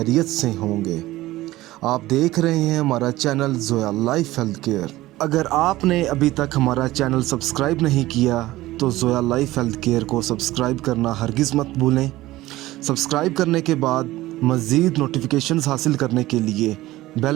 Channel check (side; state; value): left; quieter; 17.1 dB